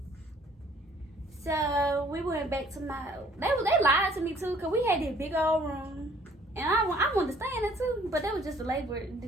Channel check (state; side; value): normal; both; correlation 0.59